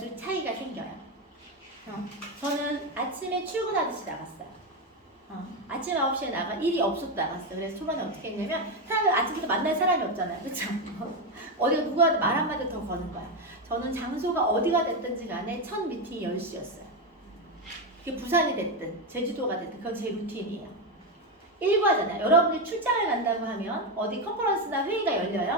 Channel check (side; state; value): both; normal; correlation 0.09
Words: 차이가 생겨요. 저는 아침에 출근하듯이 나갔어요. 아침 9시에 나가 일이 없어도 나갔어요. 그래서 초반에 어떻게 했냐면 사람을 아침부터 만날 사람이 없잖아요. 그렇죠? 어디가 누가 말 한마디 더 거는 거야. 저는 장소가 어디가 됐든지 간에 첫 미팅이 10시였어요. 그게 부산이 됐든 제주도가 됐든 그건 제 루틴이에요. 일과잖아요. 여러분이 출장을 간다고 하면 어디 컨퍼런스나 회의가